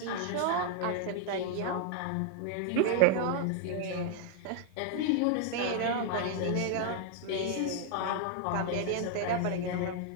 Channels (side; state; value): both; different; correlation 0.00